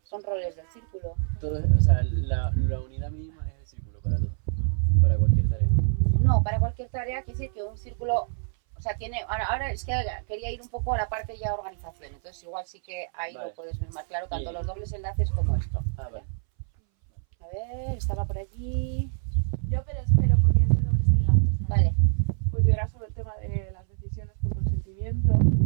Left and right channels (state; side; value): silent; left; 61 dB below the other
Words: Son roles del círculo. Todo, o sea, la unidad mínima es el círculo para todo, para cualquier tarea. No, para cualquier tarea quiere decir que un círculo, o sea, tiene, ahora es que quería ir un poco a la parte ya organización, entonces igual sí que ahí Vale. lo puedes ver más claro, tanto Y- los dobles enlaces como esto. Ah, vale. A ver, estaba por allí. Yo pero espero porque es de dobles enlaces. Vale. Pues yo era sobre el tema de las decisiones por consentimiento.